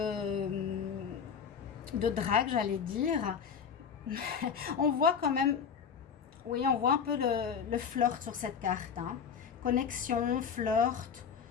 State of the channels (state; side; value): quieter; right; 6.9 dB